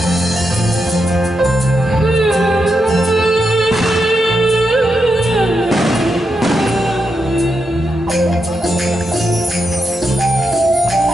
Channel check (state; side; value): normal; both; correlation 0.85